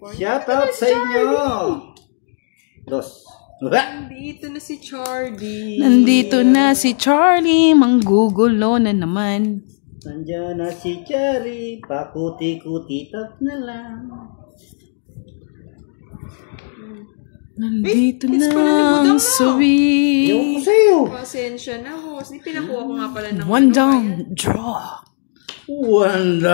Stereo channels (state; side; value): silent; right; digital silence